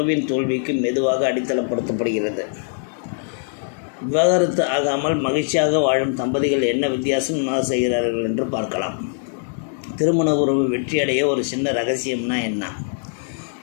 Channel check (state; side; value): silent; right; digital silence